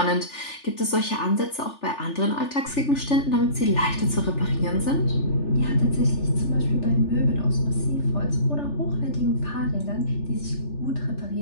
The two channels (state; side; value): late; right; 3.4 ms